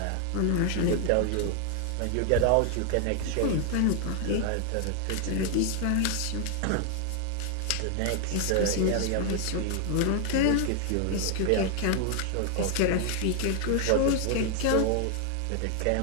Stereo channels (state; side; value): different; both; correlation 0.00